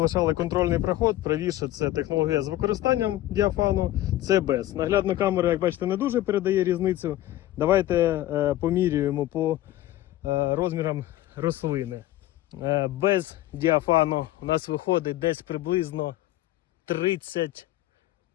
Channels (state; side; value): quieter; right; 15.0 dB